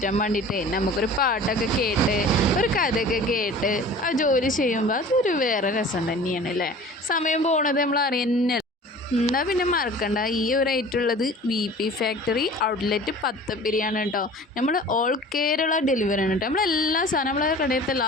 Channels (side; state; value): both; normal; correlation 0.43